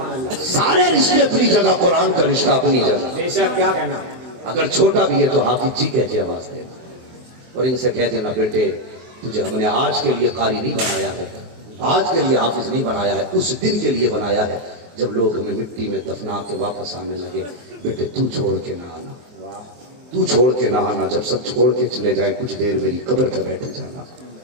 اللہ. سارے رشتے اپنی جگہ, قرآن کا رشتہ اپنی جگہ. بے شک کیا کہنا. اگر چھوٹا بھی ہے تو حافظ جی کہہ کے آواز دے, اور ان سے کہہ دینا بیٹے تجھے ہم نے آج کے لیے قاری نہیں بنایا ہے, آج کے لیے حافظ نہیں بنایا ہے, اس دن کے لیے بنایا ہے جب لوگ ہمیں مٹی میں دفنا کے واپس آنے لگے. بیٹے تو چھوڑ کے نہ آنا, تو چھوڑ کے نہ آنا. جب سب چھوڑ کے چلے جائے کچھ دیر میری قبر پہ بیٹھ جانا.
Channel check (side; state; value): left; late; 23 ms